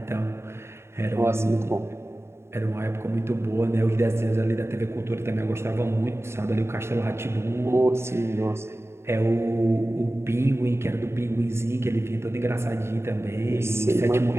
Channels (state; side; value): late; left; 0.13 ms